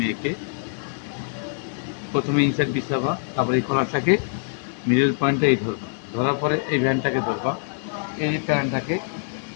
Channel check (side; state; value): right; silent; 62 dB below the other